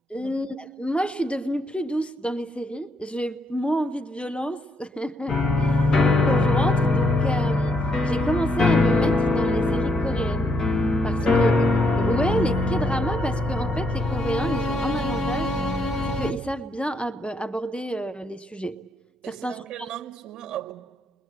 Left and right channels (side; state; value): both; normal; correlation 0.75